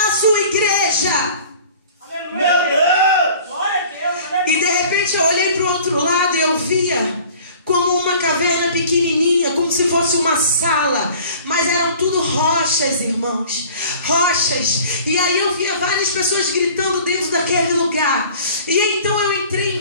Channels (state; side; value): inverted; both; correlation -0.47